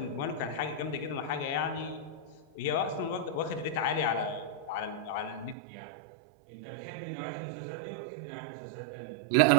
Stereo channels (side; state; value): left; drops out; at 5.6 s